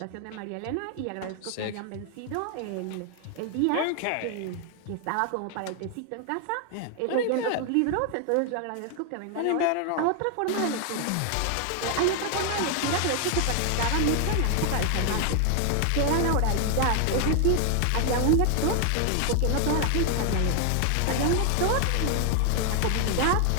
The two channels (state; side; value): different; both; correlation 0.00